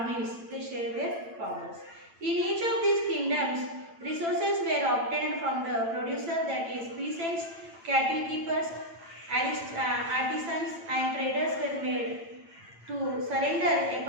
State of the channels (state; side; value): late; left; 8.9 ms